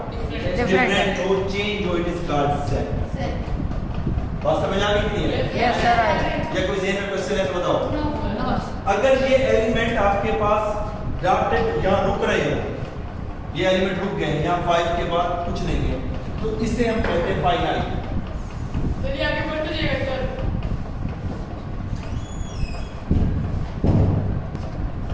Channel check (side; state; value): both; identical; correlation 1.00